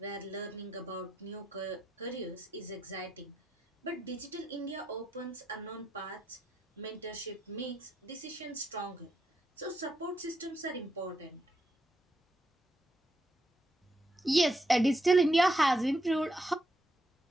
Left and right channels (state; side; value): normal; both; correlation 0.81